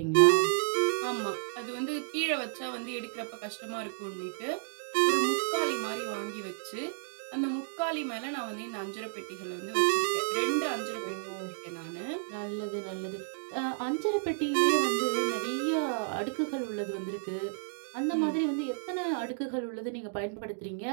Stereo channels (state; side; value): silent; left; digital silence